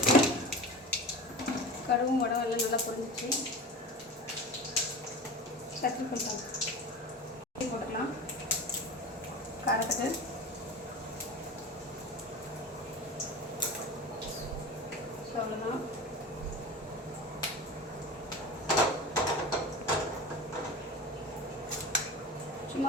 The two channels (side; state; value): both; normal; correlation 0.32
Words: கடுகும் வடகம் எல்லாம் நல்லா பொரிஞ்சிச்சு. கத்திரி போட்டலாம். போட்டுக்கலாம். காரத்துக்கு அவ்வளோதான்.